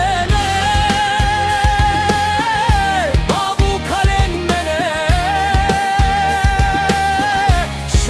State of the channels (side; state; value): both; identical; correlation 1.00